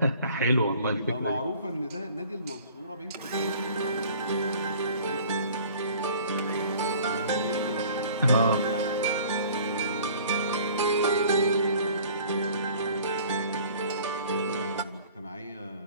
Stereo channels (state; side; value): inverted; both; correlation -0.50